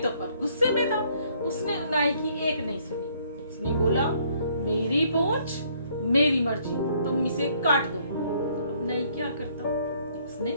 पर गुस्से में था, उसने नाई की एक नहीं सुनी। उसने बोला, मेरी पूंछ मेरी मर्जी, तुम इसे काट दो। अब नाई क्या करता,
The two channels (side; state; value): both; inverted; correlation -0.65